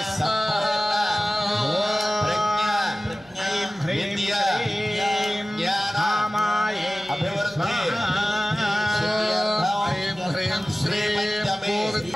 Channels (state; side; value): noise; left; hum, 28 dB below the sound